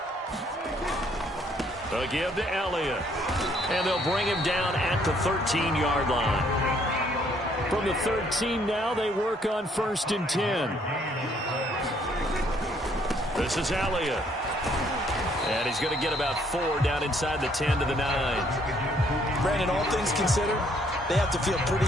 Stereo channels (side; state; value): both; normal; correlation 0.66